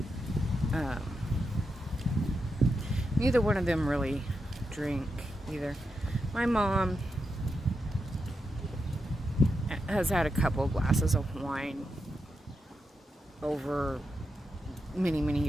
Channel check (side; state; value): both; normal; correlation 0.86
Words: neither one of them really drink either. My mom has had a couple glasses of wine over many, many